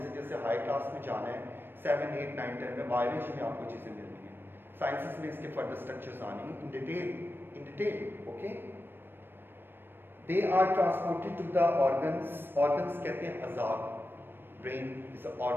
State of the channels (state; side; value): late; left; 0.098 ms